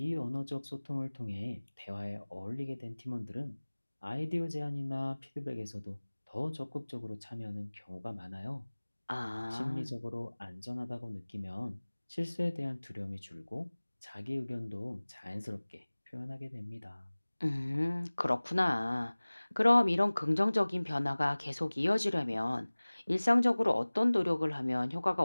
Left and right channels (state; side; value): inverted; both; correlation -1.00